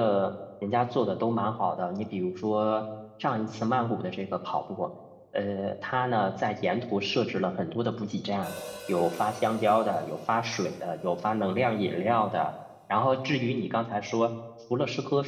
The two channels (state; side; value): identical; both; correlation 1.00